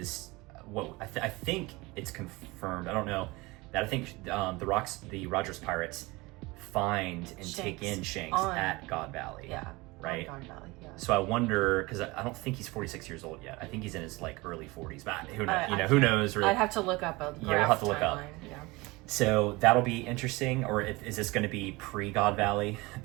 what I think it's confirmed. I don't know that. I think the Rogers Pirates find and take in Shanks at God Valley. Yeah, right. God Valley. Yeah. So I wonder, because I don't think he's 46 years old yet. I think he's in his like early 40s. But who knows? Who knows? Really? I'd have to look up a graph we'll have to look up. Yeah. So that'll be interesting. Or is this going to be pre-God Valley?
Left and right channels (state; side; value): quieter; left; 23.0 dB